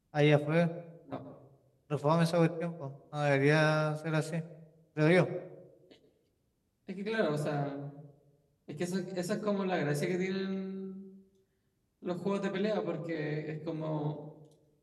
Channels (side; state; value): both; identical; correlation 1.00